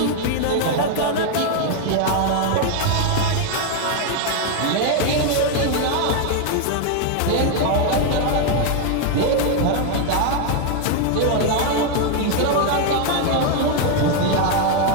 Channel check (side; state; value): both; different; correlation 0.01